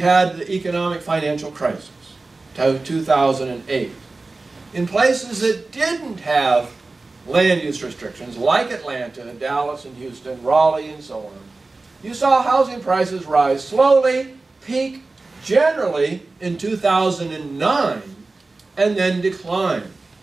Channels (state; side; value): quieter; left; 3.5 dB